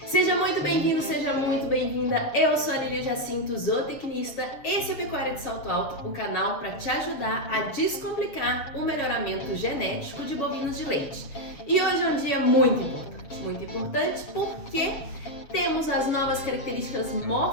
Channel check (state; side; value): late; right; 7.4 ms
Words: Seja muito bem-vindo, seja muito bem-vinda. Eu sou a Lília Jacinto, zootecnista. Esse é Pecuária de Salto Alto, o canal para te ajudar a descomplicar o melhoramento genético de bovinos de leite. E hoje é um dia muito importante porque temos as novas características